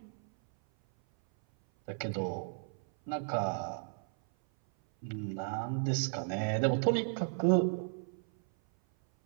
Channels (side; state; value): left; silent; 55 dB below the other